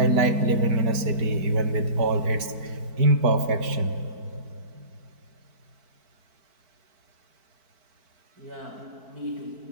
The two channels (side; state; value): left; late; 4.5 ms